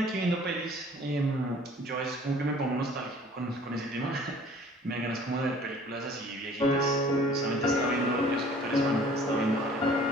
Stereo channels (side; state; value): both; normal; correlation 0.51